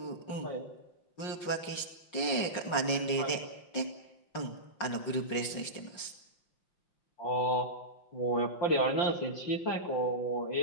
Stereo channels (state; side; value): late; right; 5.5 ms